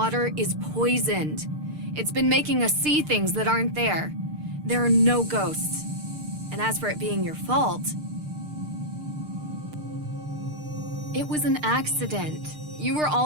is poisoned. It's been making us see things that aren't there. There are no ghosts. And as for it being your fault, it was an accident. You were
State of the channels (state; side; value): late; left; 6.6 ms